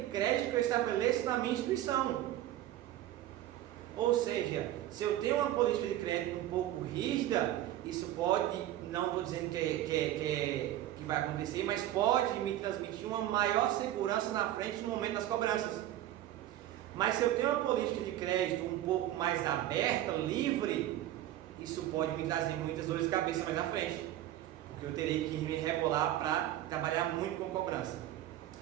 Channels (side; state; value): left; quieter; 13.3 dB